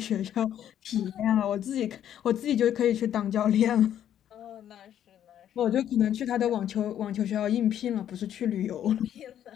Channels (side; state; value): right; quieter; 10.4 dB